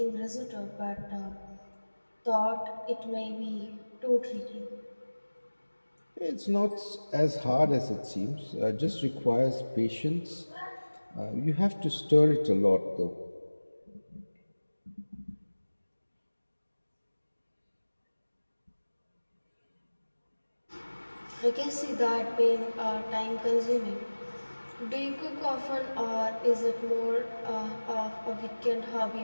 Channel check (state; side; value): inverted; both; correlation -1.00